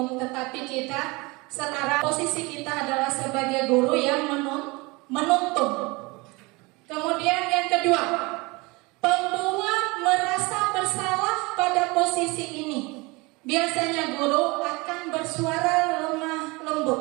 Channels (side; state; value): left; quieter; 25.1 dB